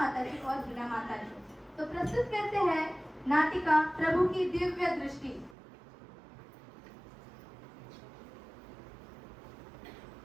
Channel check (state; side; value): drops out; left; at 5.6 s